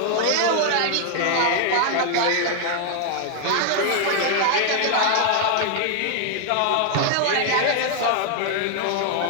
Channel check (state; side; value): different; both; correlation 0.00